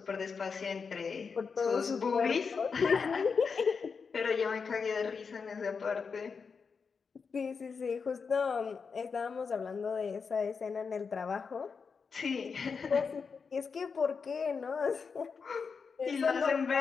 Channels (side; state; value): right; quieter; 5.5 dB